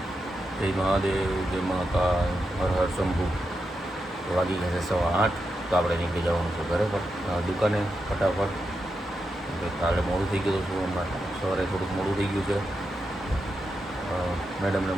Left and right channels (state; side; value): normal; both; correlation 0.87